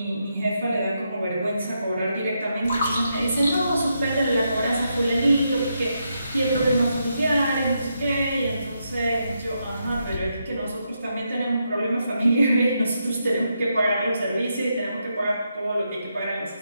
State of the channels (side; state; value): both; inverted; correlation -0.82